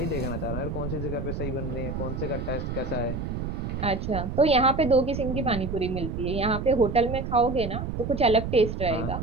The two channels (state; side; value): noise; right; rumble, 4 dB below the sound